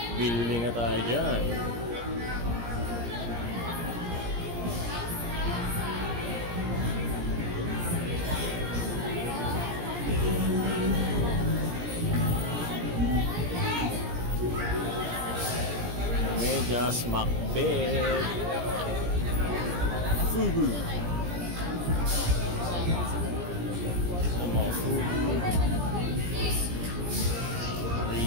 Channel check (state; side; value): late; left; 17 ms